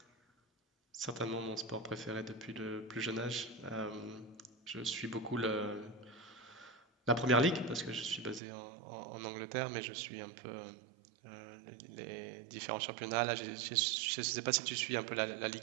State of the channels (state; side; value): drops out; left; at 8.4 s